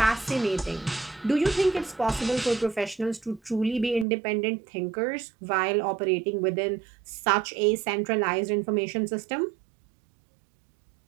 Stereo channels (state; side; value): drops out; left; at 4.0 s